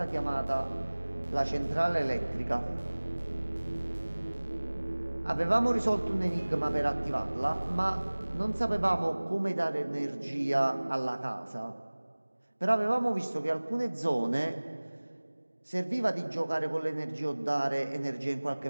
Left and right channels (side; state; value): both; inverted; correlation -1.00